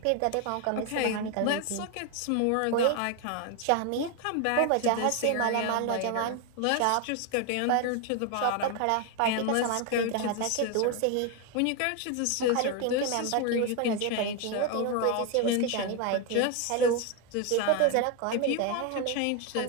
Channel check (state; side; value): different; both; correlation 0.01